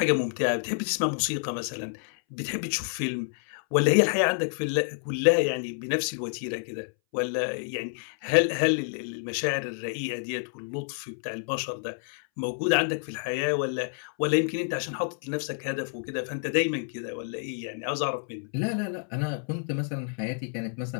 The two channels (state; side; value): silent; right; 59 dB below the other